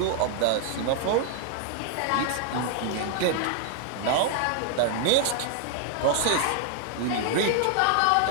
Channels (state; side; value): different; both; correlation 0.00